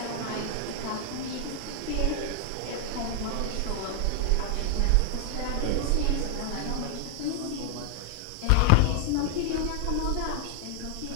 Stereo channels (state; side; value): different; both; correlation 0.00